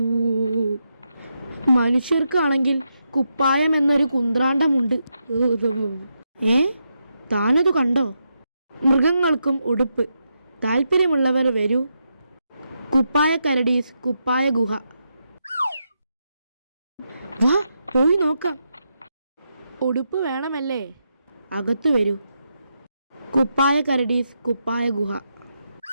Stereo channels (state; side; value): inverted; both; correlation -0.84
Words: മനുഷ്യർക്കാണെങ്കിൽ കുപ്പായം എന്നൊരു കുന്ത്രാണ്ടമുണ്ട്. താനത് കണ്ടോ? മൃഗങ്ങൾക്കും ഉടുപ്പ്. താല്പര്യമുള്ളവർ വരൂ. കുപ്പായ കരടീസ് കുപ്പായ ഗുഹ. വാ പോയി നോക്കാം. ഉടുപ്പ് വേണമല്ലേ? അകത്തു വരൂ. കുപ്പായ കരടീസ് കുപ്പായ ഗുഹ.